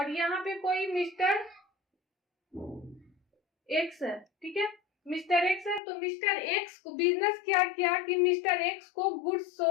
यहाँ पे कोई मिस्टर एक्स है, ठीक है, मिस्टर एक्स है। तो मिस्टर एक्स को बिजनेस क्या किया कि मिस्टर एक्स को गुड्स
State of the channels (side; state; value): right; drops out; at 5.8 s